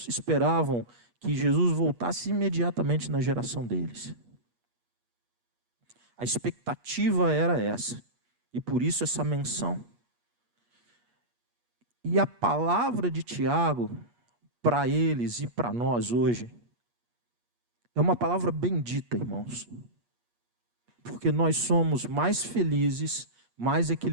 esperavam que Jesus voltasse imediatamente na geração deles. A expectativa era essa. E por isso essa menção. E a palavra de Tiago, para eles e para nós hoje, é uma palavra bendita, irmãos. Porque nós somos mais felizes, mais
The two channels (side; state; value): left; late; 8.4 ms